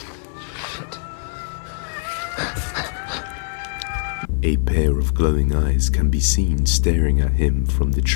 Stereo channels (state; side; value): silent; right; 59 dB below the other